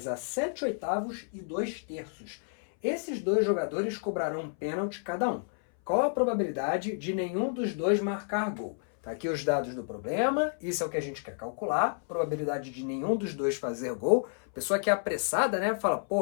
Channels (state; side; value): silent; right; 57 dB below the other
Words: a 7/8 e 2/3. Esses dois jogadores cobrarão um pênalti cada um. Qual a probabilidade de nenhum dos dois marcar gol? Tá aqui os dados do problema, isso é o que a gente quer calcular, probabilidade de nenhum dos dois fazer gol. Pessoa que é apressada, né, fala,